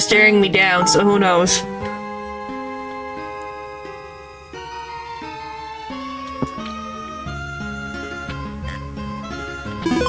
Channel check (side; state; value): both; identical; correlation 1.00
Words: staring me down, so who knows?